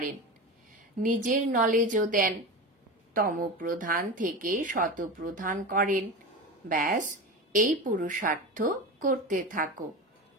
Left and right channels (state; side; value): normal; both; correlation 0.26